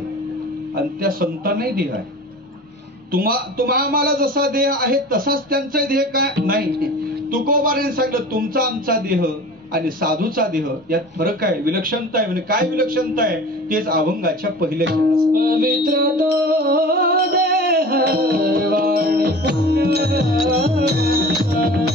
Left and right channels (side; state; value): both; normal; correlation 0.39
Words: आणि त्या संतांनाही देह आहे. तुम्हाला जसा देह आहे तसाच त्यांचा देह काय नाही. तुकोबाराने सांगितलं, तुमचा आमचा देह आणि साधूचा देह यात फरक आहे, विलक्षणता आहे. म्हणजे काय विलक्षणता आहे तेच अभंगाच्या पहिल्या पवित्र तो देह वाणी पवित्र